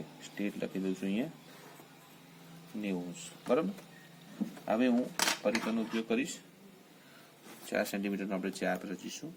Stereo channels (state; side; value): identical; both; correlation 1.00